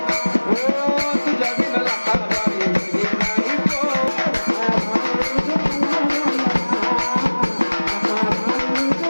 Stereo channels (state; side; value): inverted; both; correlation -1.00